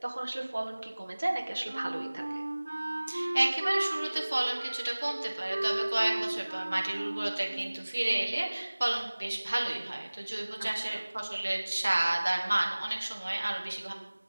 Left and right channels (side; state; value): both; inverted; correlation -1.00